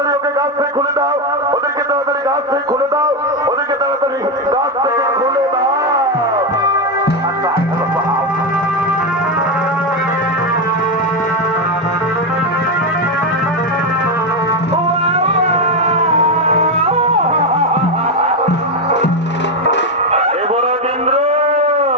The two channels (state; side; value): normal; both; correlation 0.08